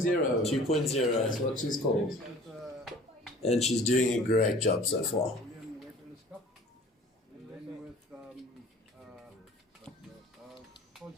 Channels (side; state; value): both; normal; correlation 0.47